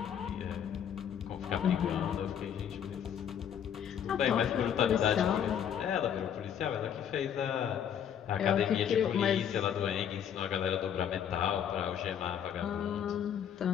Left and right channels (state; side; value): quieter; right; 8.9 dB